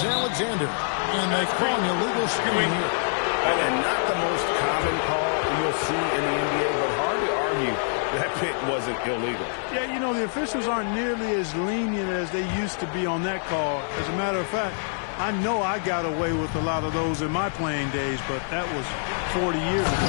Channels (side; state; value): right; silent; digital silence